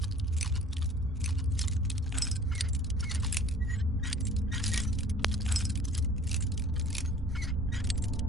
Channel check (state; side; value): normal; both; correlation 0.50